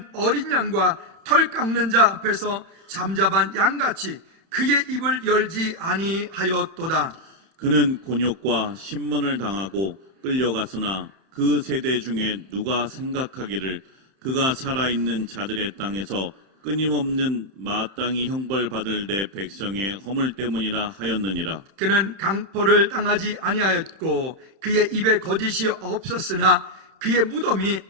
어린 양과 털 깎는 자 앞에서 잠잠한 양같이 그의 입을 열지 아니하였도다. 그는 곤욕과 신문을 당하고 끌려갔으나 그 세대 중에 누가 생각하기를 그가 살아있는 자들의 땅에서 끊임없는 마땅히 형벌받을 내 백성의 허물 때문이라 하였느니라. 그는 강포를 당하지 아니하였고 그의 입에 거짓이 없었으나 그의 무덤이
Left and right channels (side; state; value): left; late; 31 ms